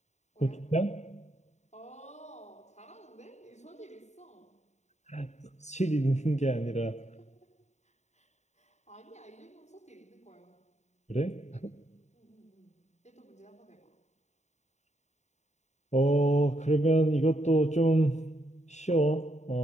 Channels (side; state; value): right; late; 0.33 ms